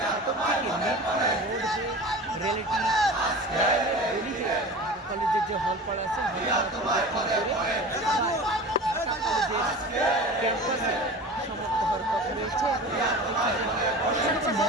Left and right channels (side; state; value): both; normal; correlation 0.35